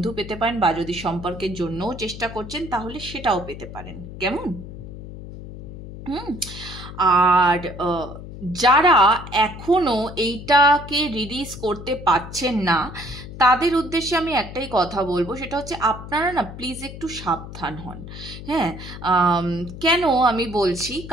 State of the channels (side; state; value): left; noise; hum, 12 dB below the sound